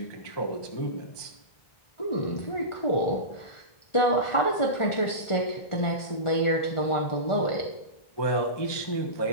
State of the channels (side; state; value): right; late; 1.4 ms